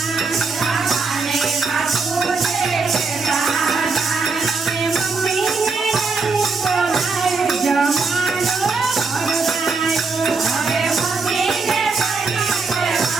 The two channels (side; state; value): left; quieter; 4.4 dB